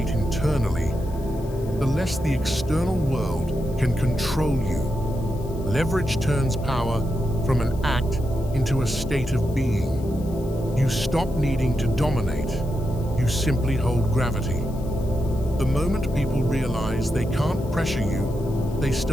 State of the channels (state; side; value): noise; left; hiss, 23 dB below the sound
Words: internally, the less the external world can control you. Leverage turns power from an act into a state of being. You stop needing to dominate. You simply hold gravity. The moment people realize they can't pressure you, they